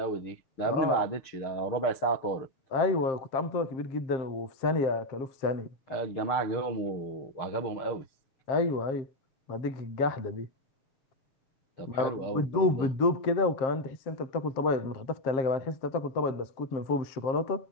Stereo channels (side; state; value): right; late; 6.6 ms